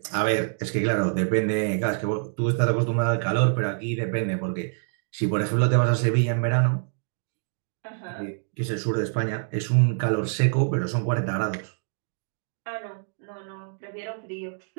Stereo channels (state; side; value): silent; left; digital silence